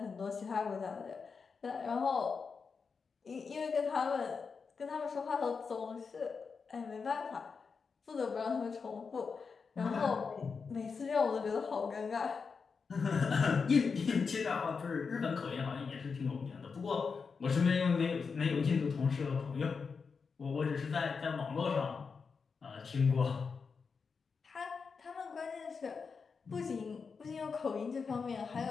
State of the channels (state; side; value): quieter; right; 5.3 dB